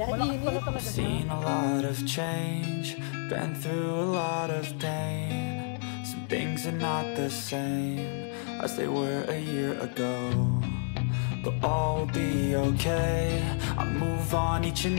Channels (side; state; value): right; silent; 55 dB below the other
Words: Init. I've seen a lot of change, been through a lot of pain. Some things are not the same as they were a year ago, but all will be okay. I move on each